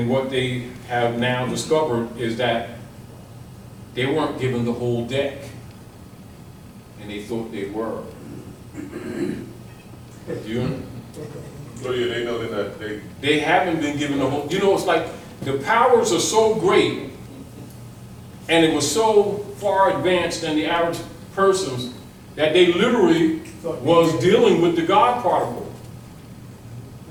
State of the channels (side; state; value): both; identical; correlation 1.00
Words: what they have now discovered is that they weren't given the whole deck, and they thought they were. You? So yeah, they know that They haven't been given the whole, you know, it's like the powers are so great and it was so far advanced than the average persons that they literally was dealing with the God particle.